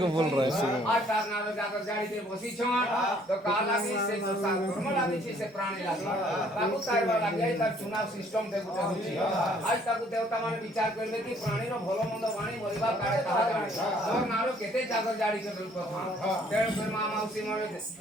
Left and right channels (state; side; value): normal; both; correlation 0.61